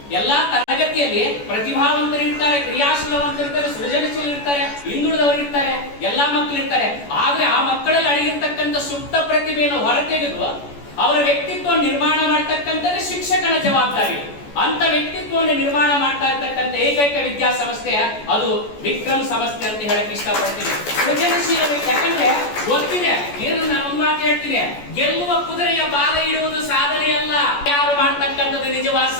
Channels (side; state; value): right; late; 14 ms